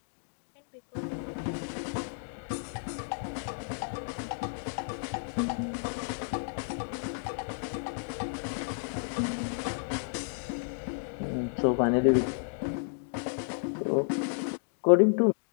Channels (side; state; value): right; silent; digital silence